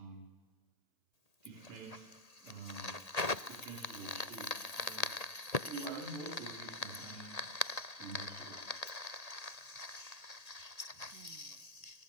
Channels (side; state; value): right; late; 1.8 ms